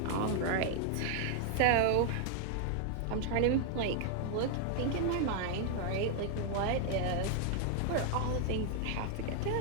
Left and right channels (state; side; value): different; both; correlation 0.00